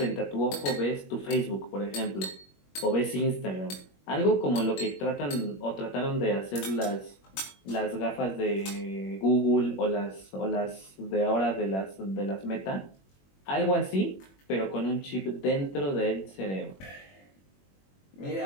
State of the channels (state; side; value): late; right; 21 ms